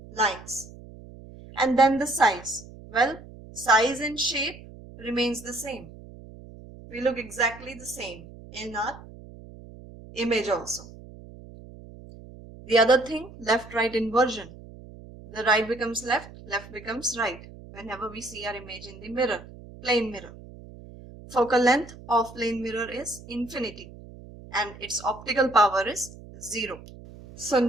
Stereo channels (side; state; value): right; noise; hum, 17 dB below the sound